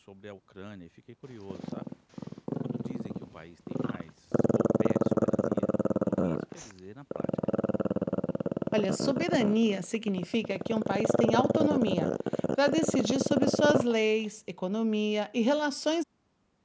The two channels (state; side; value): identical; both; correlation 1.00